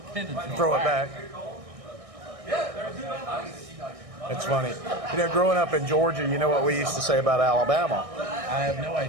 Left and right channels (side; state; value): left; late; 1.6 ms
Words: pin and Throw it back. It's funny. You know, growing up in Georgia, you know what we used to say about Alabama? I have no